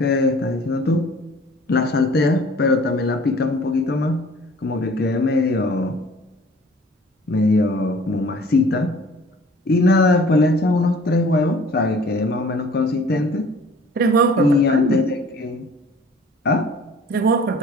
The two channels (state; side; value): normal; both; correlation 0.50